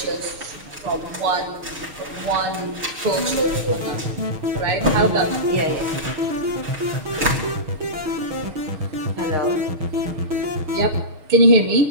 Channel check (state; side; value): late; left; 6.5 ms